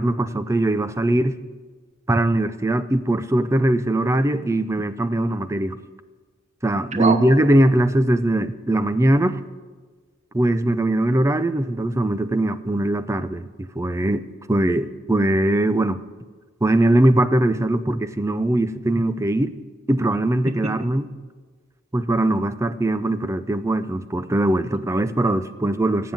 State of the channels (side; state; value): both; normal; correlation 0.86